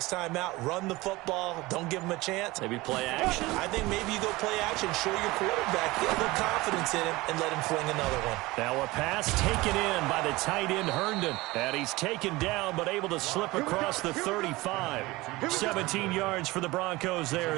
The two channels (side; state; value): left; quieter; 20.7 dB